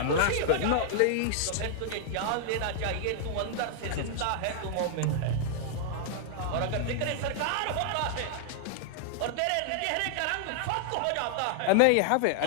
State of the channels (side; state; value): both; different; correlation -0.01